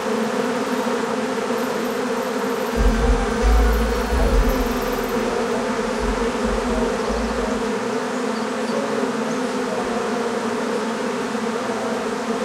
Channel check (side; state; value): both; identical; correlation 1.00